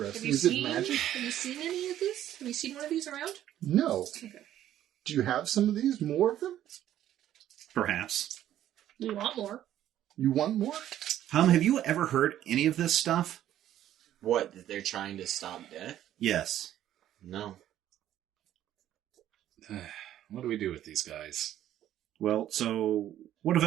Is it magic? Have you seen any of this? Have you seen one of these around? No. Okay. Do you have some of these? More of them? Perhaps. We want more. You want more? Have you ever heard any of this stuff? What, that they're trying to stop death? Yes. No. What do we do with these guys? Well, so what of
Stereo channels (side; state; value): left; quieter; 12.0 dB